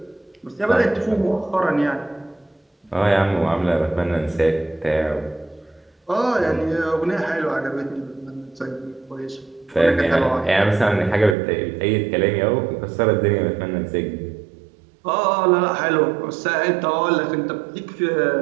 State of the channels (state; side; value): drops out; left; at 11.4 s